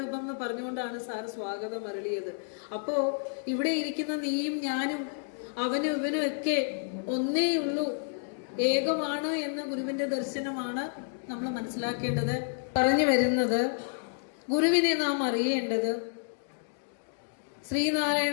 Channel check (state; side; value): silent; right; digital silence